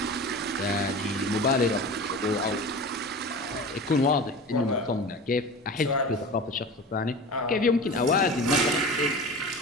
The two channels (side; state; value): both; normal; correlation 0.34